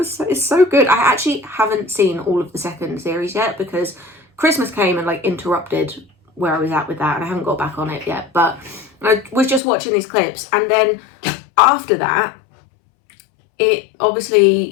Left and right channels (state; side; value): drops out; right; at 9.6 s